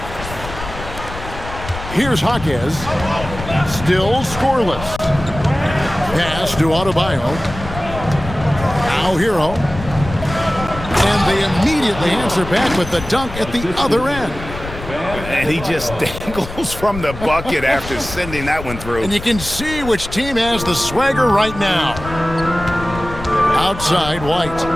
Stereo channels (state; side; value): noise; left; rumble, 11 dB below the sound